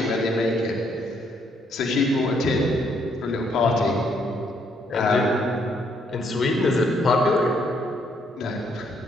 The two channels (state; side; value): normal; both; correlation 0.71